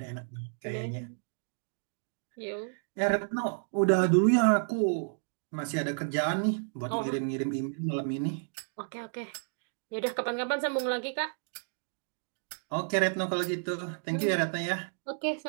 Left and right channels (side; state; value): left; silent; digital silence